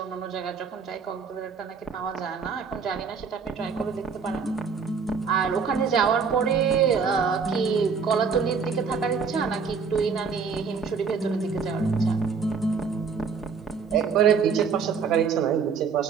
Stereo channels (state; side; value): quieter; left; 5.7 dB